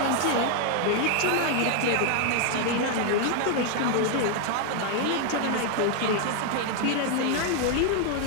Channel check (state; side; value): different; both; correlation 0.00